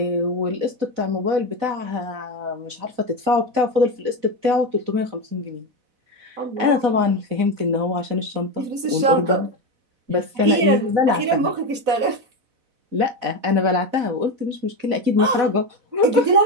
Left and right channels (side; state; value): left; late; 4.0 ms